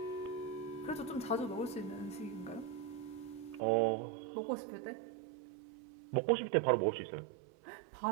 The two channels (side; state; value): left; drops out; at 3.6 s